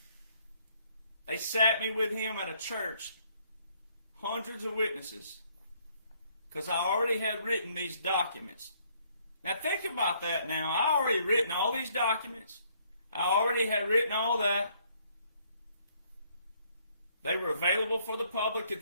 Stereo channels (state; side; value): inverted; both; correlation -0.66